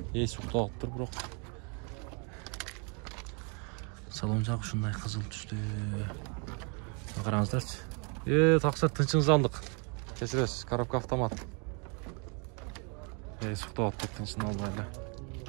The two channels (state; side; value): quieter; left; 35.4 dB